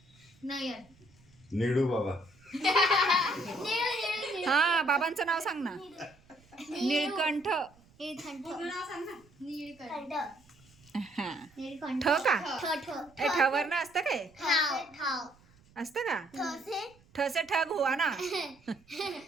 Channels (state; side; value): noise; right; rumble, 29 dB below the sound